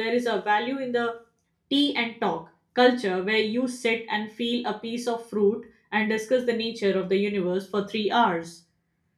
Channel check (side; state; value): both; identical; correlation 1.00